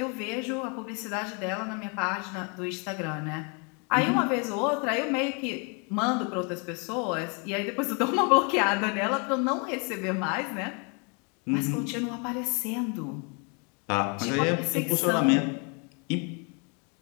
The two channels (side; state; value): right; quieter; 35.0 dB